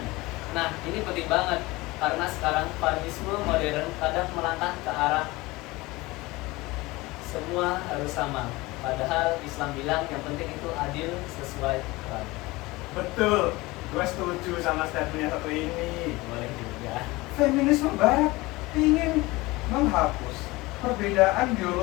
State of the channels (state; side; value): quieter; right; 21.3 dB